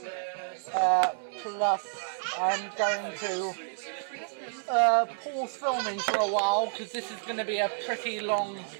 Plus, I'm going to pause filming for a while because this is going to be a pretty long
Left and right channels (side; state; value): left; silent; digital silence